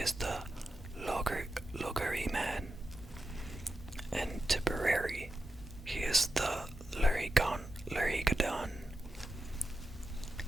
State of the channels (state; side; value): normal; both; correlation 0.89